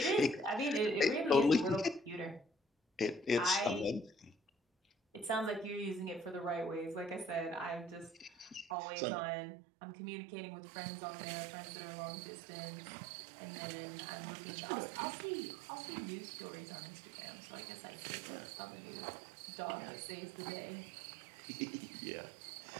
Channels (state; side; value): drops out; left; at 8.8 s